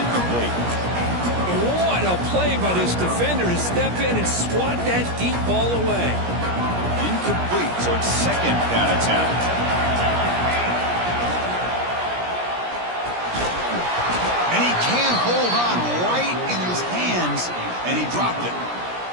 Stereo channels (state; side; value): late; left; 17 ms